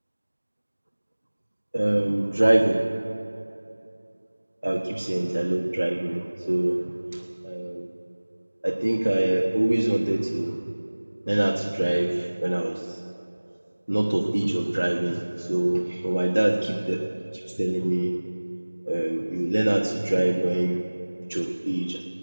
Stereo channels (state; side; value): inverted; both; correlation -1.00